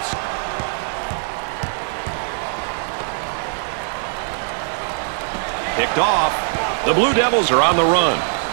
Picked off. The Blue Devils are on the run.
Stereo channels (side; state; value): left; silent; 65 dB below the other